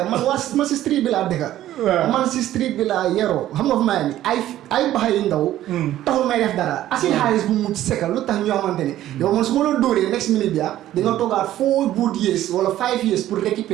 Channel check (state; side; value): quieter; left; 13.3 dB